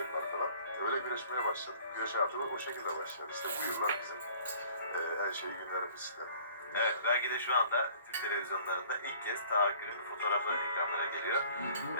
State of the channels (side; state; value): both; inverted; correlation -0.52